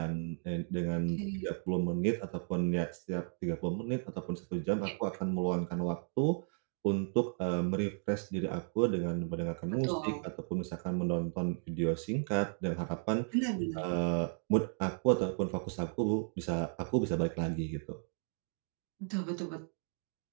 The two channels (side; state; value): left; silent; 55 dB below the other